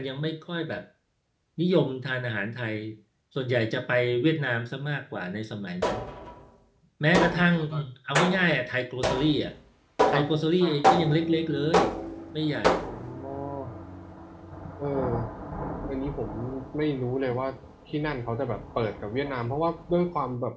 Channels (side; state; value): both; identical; correlation 1.00